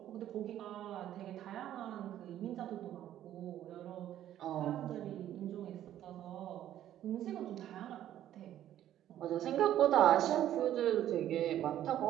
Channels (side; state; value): left; quieter; 11.9 dB